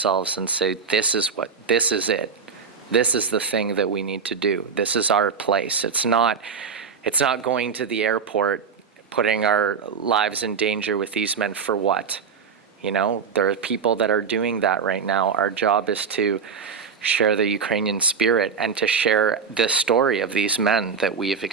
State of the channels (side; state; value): left; quieter; 5.9 dB